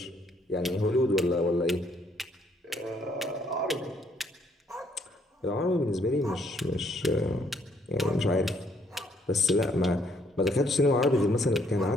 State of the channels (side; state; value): both; normal; correlation 0.68